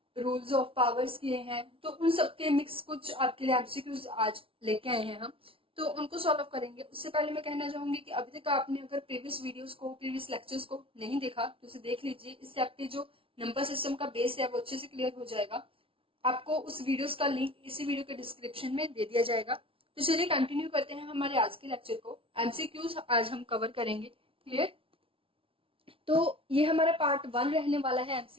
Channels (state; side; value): late; left; 0.26 ms